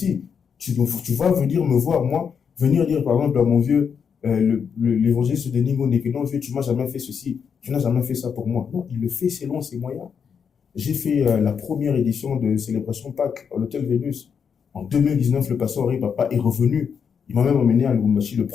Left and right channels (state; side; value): quieter; right; 6.8 dB